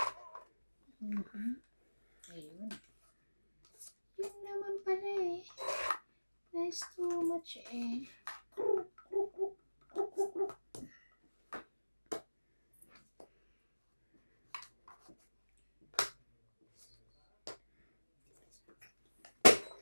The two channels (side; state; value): both; inverted; correlation -1.00